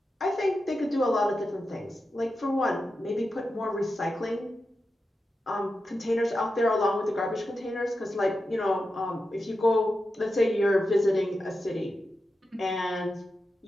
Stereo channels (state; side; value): normal; both; correlation 0.90